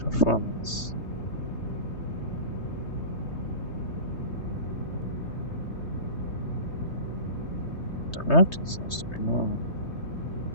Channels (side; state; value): right; late; 3.2 ms